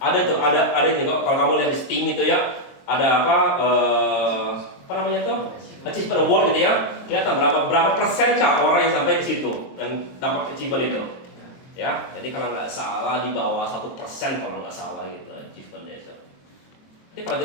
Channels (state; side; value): late; right; 23 ms